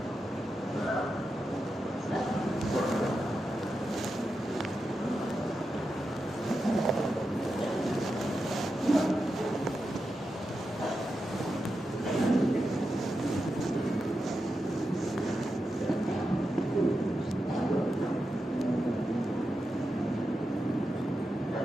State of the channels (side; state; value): both; normal; correlation 0.89